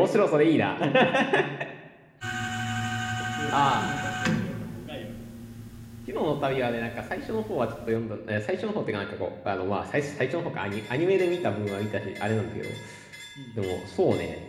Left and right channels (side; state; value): both; identical; correlation 1.00